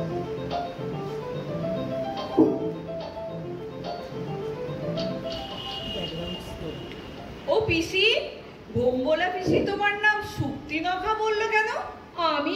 ও পিসি, ভোম্বলা পিসি তোমার নাম শক্তিনখা বললো কেন? আমি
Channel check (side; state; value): both; identical; correlation 1.00